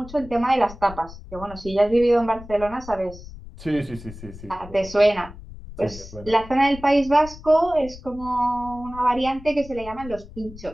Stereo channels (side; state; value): left; noise; rumble, 16 dB below the sound